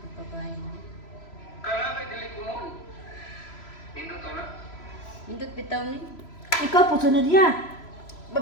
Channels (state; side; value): late; right; 3.0 ms